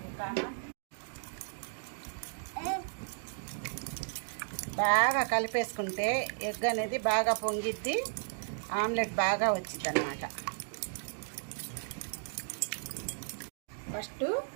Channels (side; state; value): left; silent; digital silence